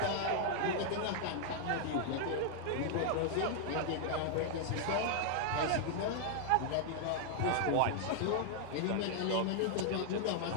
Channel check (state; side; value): different; both; correlation 0.00